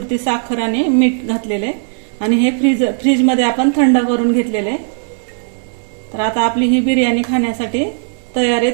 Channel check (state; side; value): silent; left; 69 dB below the other